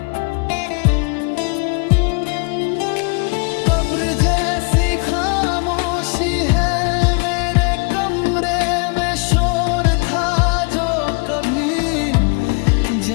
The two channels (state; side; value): quieter; right; 33.6 dB